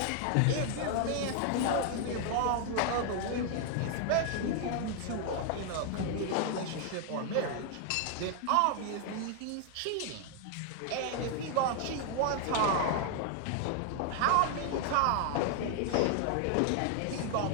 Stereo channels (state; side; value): different; both; correlation 0.00